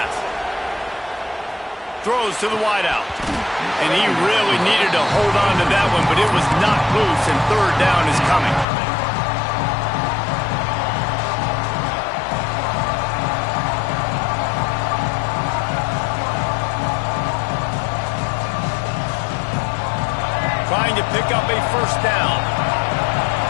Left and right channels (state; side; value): drops out; right; at 8.7 s